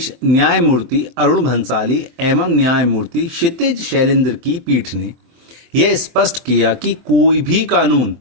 न्यायमूर्ति अरुण भंसाली एवं न्यायमूर्ति क्षितिज शैलेंद्र की पीठ ने यह स्पष्ट किया कि कोई भी कानून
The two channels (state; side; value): late; left; 23 ms